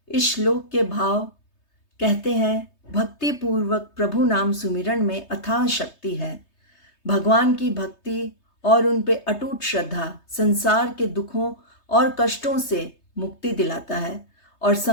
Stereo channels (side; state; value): right; late; 3.3 ms